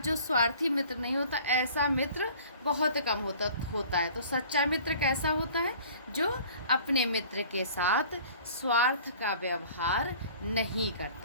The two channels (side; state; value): both; inverted; correlation -0.48